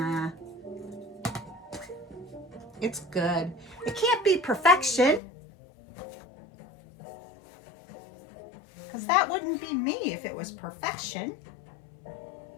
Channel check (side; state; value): right; drops out; at 5.2 s